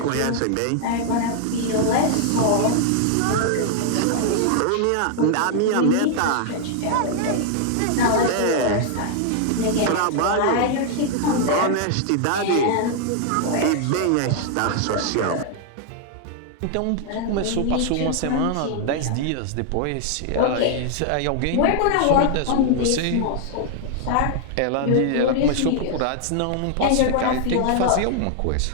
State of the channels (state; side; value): different; both; correlation 0.00